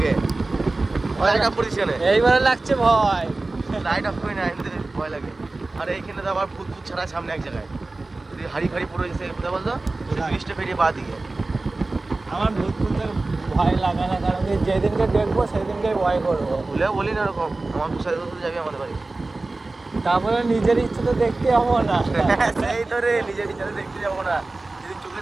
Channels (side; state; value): left; quieter; 3.2 dB